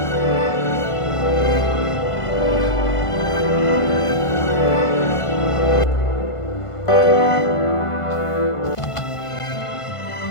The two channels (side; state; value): right; late; 1.5 ms